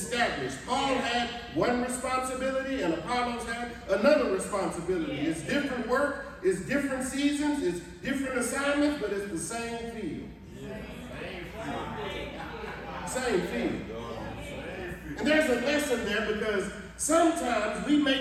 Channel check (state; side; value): identical; both; correlation 1.00